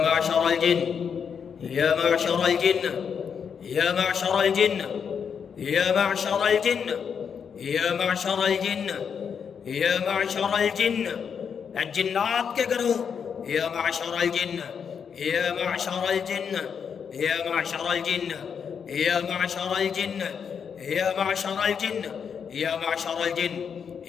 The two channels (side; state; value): right; quieter; 7.0 dB